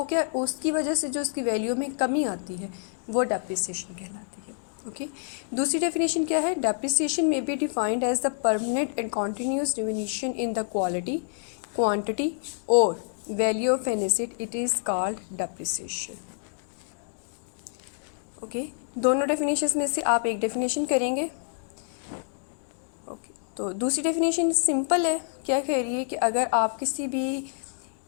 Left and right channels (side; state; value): right; silent; digital silence